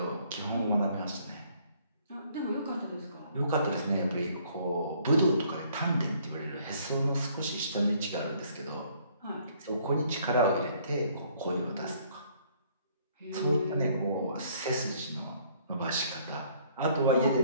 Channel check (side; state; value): both; inverted; correlation -0.62